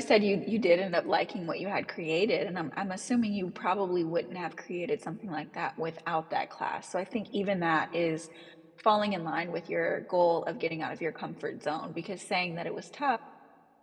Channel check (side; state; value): both; identical; correlation 1.00